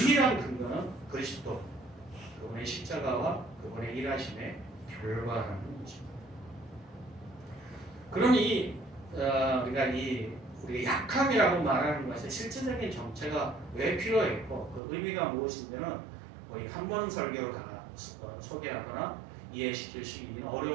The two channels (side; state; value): left; drops out; at 14.8 s